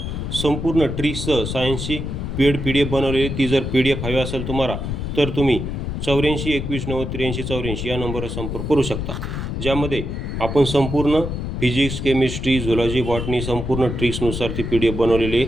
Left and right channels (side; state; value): left; noise; rumble, 4 dB below the sound